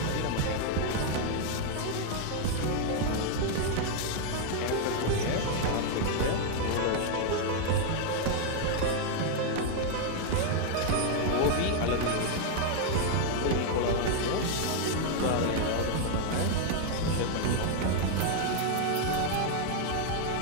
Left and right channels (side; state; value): both; different; correlation 0.00